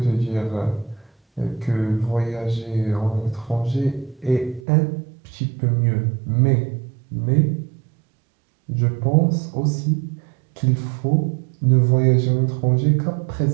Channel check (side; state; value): left; drops out; at 4.6 s